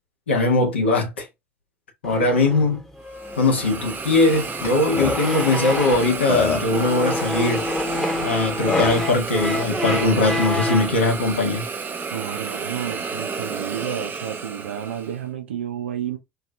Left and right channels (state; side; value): normal; both; correlation 0.07